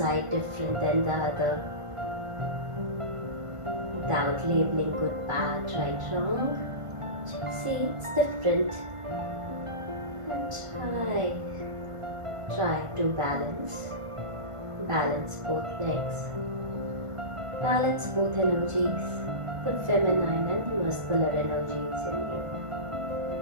different than the other? Without labeling good, bad, right, wrong. Just see it's different. And try to balance. Balance both legs. Balance both energies. The feminine and the muscular energies in you.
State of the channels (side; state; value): left; late; 1.5 ms